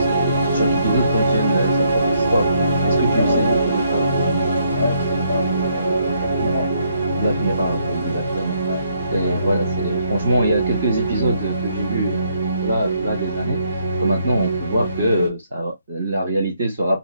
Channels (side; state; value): both; inverted; correlation -0.72